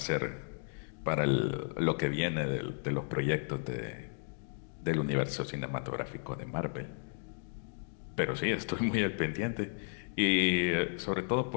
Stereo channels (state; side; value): silent; right; digital silence